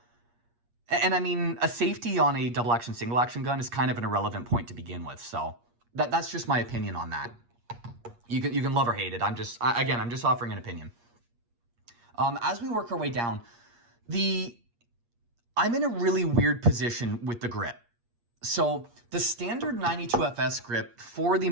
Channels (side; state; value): left; late; 8.5 ms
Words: and I mean, a safety on a double action, single action gun is kind of an irrelevant point to begin with. So that's just my opinion on that. You can love or hate it. I'm just offering an opinion. As we work our way down, I'm in a really weird position with the grip. So the standard 92FS grip, for the